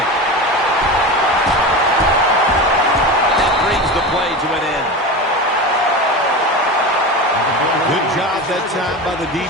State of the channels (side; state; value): both; normal; correlation 0.26